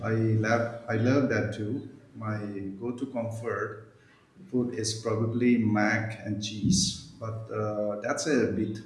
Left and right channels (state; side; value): identical; both; correlation 1.00